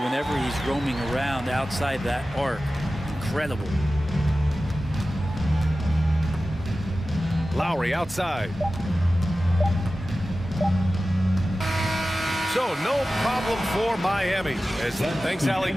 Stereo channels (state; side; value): normal; both; correlation 0.95